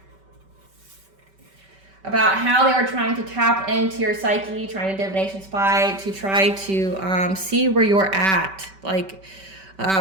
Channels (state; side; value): late; left; 5.2 ms